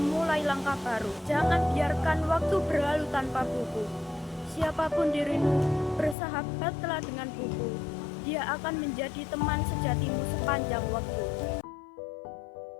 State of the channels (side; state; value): right; drops out; at 6.2 s